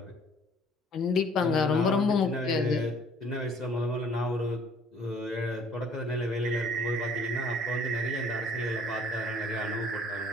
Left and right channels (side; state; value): both; normal; correlation 0.56